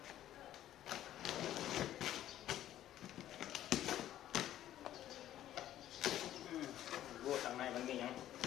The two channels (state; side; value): quieter; right; 12.4 dB